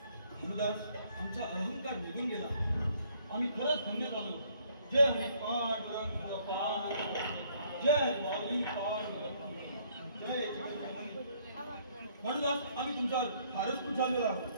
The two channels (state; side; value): inverted; both; correlation -0.65